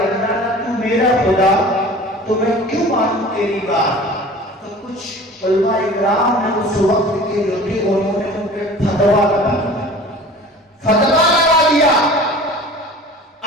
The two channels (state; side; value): normal; both; correlation 0.42